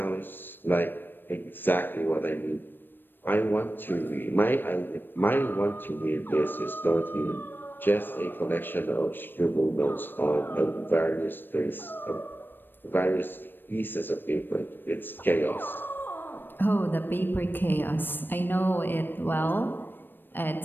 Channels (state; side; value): late; right; 0.095 ms